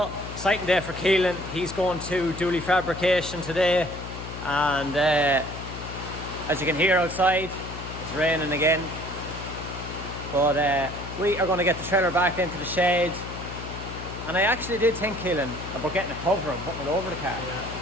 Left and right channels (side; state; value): left; noise; hum, 9 dB below the sound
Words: exciting day for Keelan. He's going to Dooley fabrication today, and as you can hear outside, it's raining again. But we are going to get the trailer back into the shed, and I actually did think, Keelan, about getting a cover and putting it over the car. Yeah.